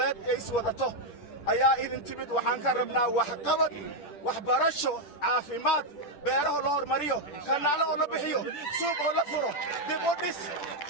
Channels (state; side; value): late; right; 10 ms